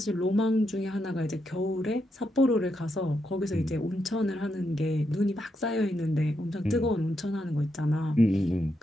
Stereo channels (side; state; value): both; normal; correlation 0.82